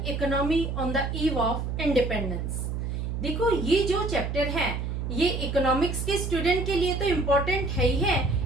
economy on the eve of independence. देखो, ये जो चैप्टर है ये इकोनॉमिक्स के स्टूडेंट के लिए तो इम्पोर्टेंट है ही है,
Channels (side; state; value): right; noise; hum, 3 dB below the sound